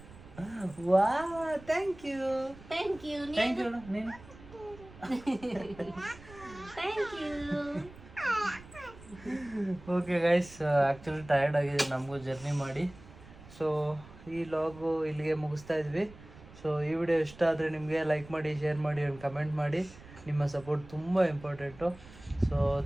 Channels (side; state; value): right; noise; rumble, 19 dB below the sound